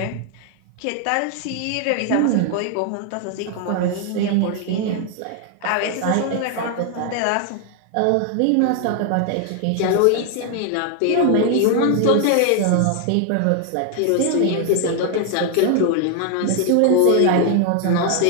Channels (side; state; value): both; different; correlation 0.00